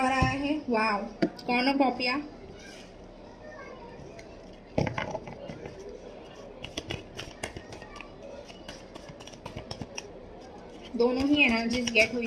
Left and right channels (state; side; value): identical; both; correlation 1.00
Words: आया है, वाव, कॉर्नोकॉपिया। दोनों ही एनर्जीज गेट हुई